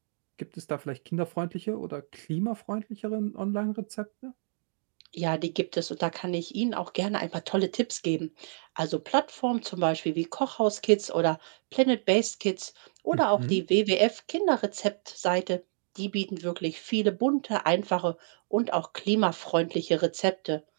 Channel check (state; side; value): silent; left; digital silence